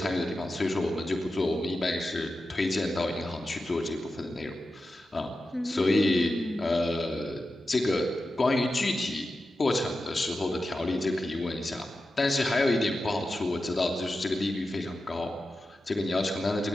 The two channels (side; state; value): both; normal; correlation 0.91